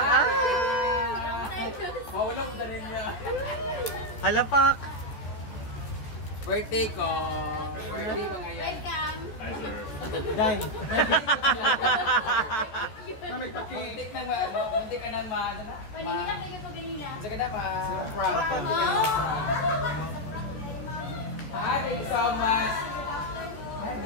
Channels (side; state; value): right; late; 14 ms